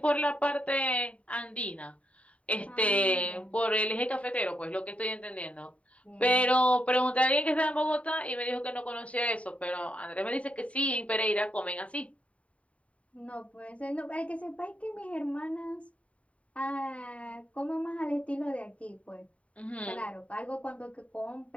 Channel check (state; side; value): late; right; 0.065 ms